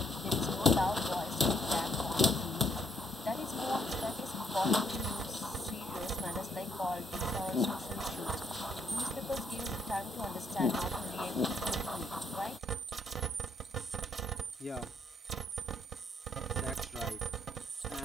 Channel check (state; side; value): normal; both; correlation 0.71